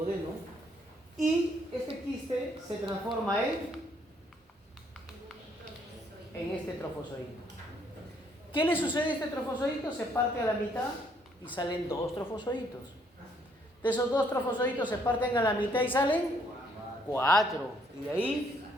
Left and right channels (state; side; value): normal; both; correlation 0.68